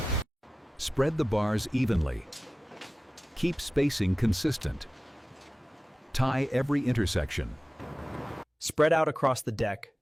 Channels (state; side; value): normal; both; correlation 0.96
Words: Spread the bars evenly. Keep spacing consistent. Tie every intersection. Spread out across the deck,